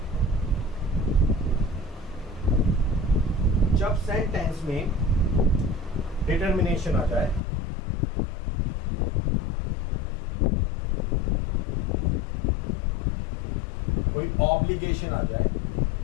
जब सेंटेंस में डिटर्मिनेशन आ जाए, कोई ऑब्लिगेशन आ जाए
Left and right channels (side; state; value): right; drops out; at 7.4 s